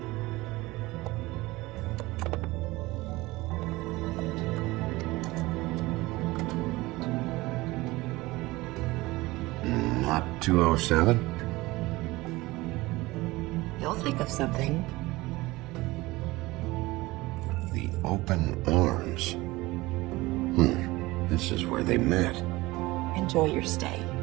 Not 207? You'll think of something. The open arms. This is where they met. Enjoy your stay.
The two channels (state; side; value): quieter; left; 20.3 dB